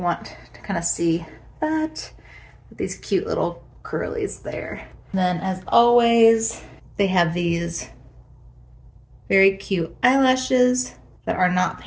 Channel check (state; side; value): identical; both; correlation 1.00